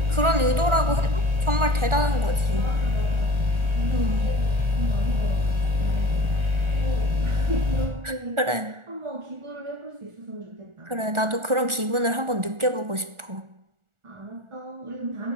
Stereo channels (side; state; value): left; late; 1.4 ms